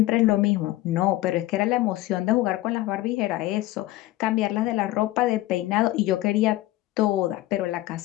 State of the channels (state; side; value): quieter; right; 16.8 dB